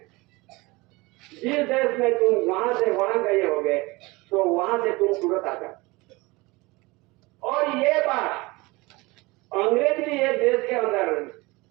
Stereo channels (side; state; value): left; quieter; 23.3 dB